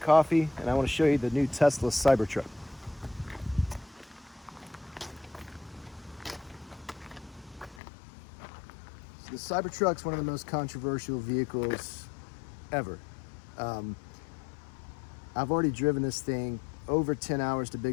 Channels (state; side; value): drops out; right; at 7.8 s